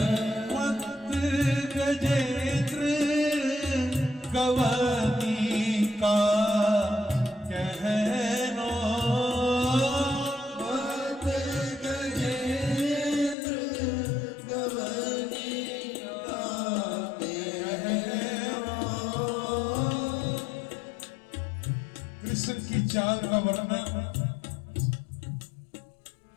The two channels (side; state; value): right; drops out; at 13.4 s